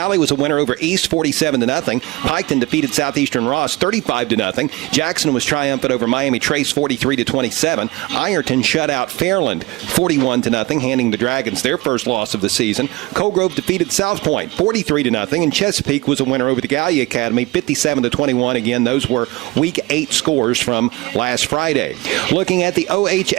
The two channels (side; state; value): left; quieter; 20.9 dB